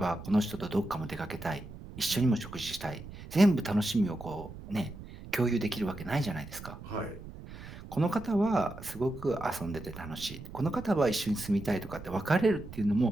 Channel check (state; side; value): noise; right; rumble, 13 dB below the sound